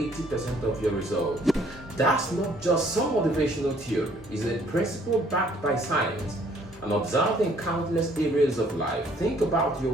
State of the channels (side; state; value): both; normal; correlation 0.61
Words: 80% of your results. That's not just some motivational theory, it's a principle backed by science and observed in countless areas of life. Think about your